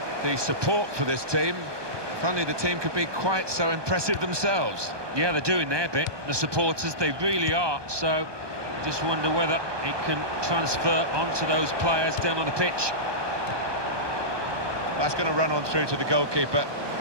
the support for this team. If only the team could be quite so impressive themselves. Yeah, they're doing their bit, the supporters, they really are. So, just wonder whether it can transfer onto those players down on the pitch. That's going to run on through to the goalkeeper.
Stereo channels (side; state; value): left; late; 1.2 ms